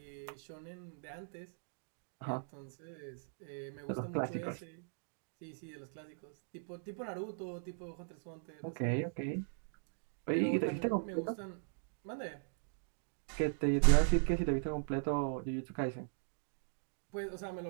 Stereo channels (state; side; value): silent; left; digital silence